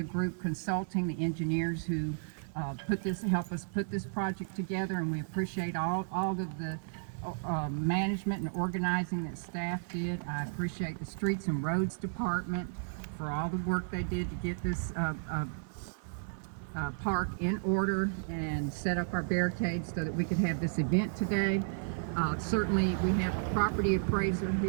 Group Consulting, the engineers who help us put this project together, and we appreciate all of the management and organizing that staff did. I appreciate the Streets and Roads Department for all the work they did to get this park in order and set up our barricades so that we could have this event today. Certainly, we have the property appraiser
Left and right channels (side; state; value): left; silent; 56 dB below the other